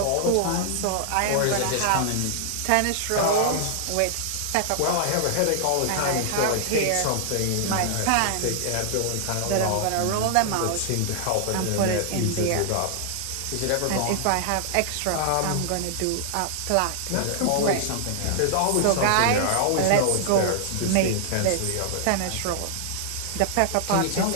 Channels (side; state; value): both; different; correlation 0.00